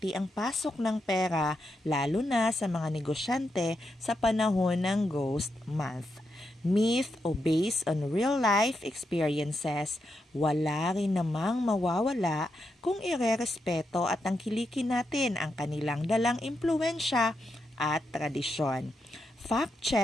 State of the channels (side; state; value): both; normal; correlation 0.84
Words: ang pasok ng pera, lalo na sa mga negosyante sa panahon ng Ghost Month. Myth o based on real life experiences, wala rin namang mawawala kung irerespeto at tangkilikin natin ang kanilang dalang impluensya at tradisyon. Fact